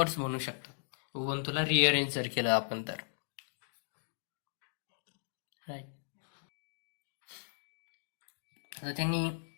म्हणू शकतात, उबंतूला रिअरेंज जर केलं आपण तर, राईट. आता त्यांनी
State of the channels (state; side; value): silent; right; digital silence